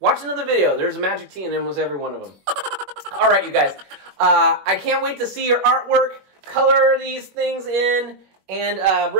another video. There's a magic tea in almost every one of them. All right, you guys. I can't wait to see your artwork. Color these things in and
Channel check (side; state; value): left; late; 21 ms